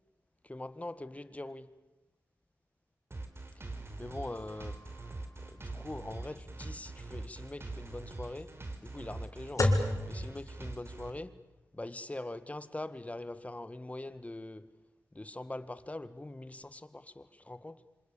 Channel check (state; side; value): normal; both; correlation 0.90